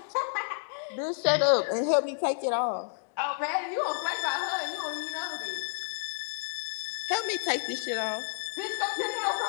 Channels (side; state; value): right; silent; digital silence